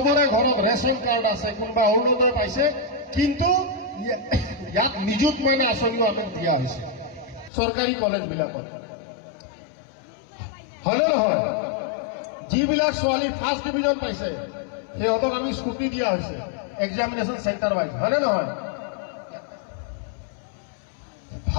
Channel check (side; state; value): right; drops out; at 7.5 s